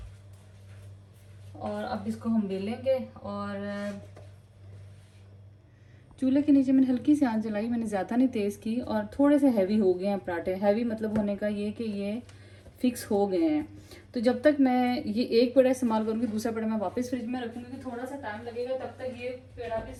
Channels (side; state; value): both; identical; correlation 1.00